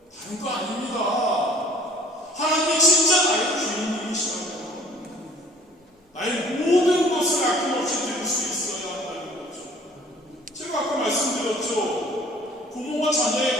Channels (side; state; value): both; normal; correlation 0.52